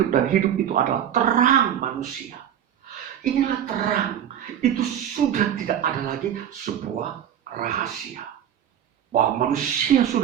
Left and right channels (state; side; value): quieter; left; 9.9 dB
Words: dan hidup itu adalah terang manusia. Inilah terang. Itu sudah tidak ada lagi sebuah rahasia. Bahwa manusia